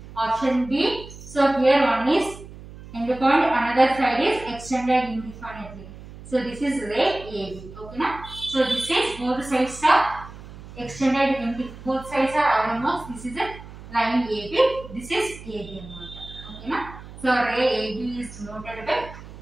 Option B, so here one is end point, another side is extended indefinitely. So this is ray AB. Okay na? So this is both sides are extended both sides are RMS. This is a line AB. This is AB anamata. Okay na? So ray AB is denoted by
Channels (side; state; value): right; noise; hum, 16 dB below the sound